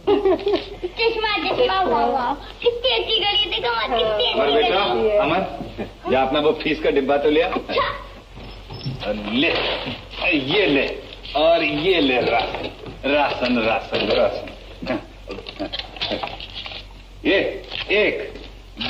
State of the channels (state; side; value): identical; both; correlation 1.00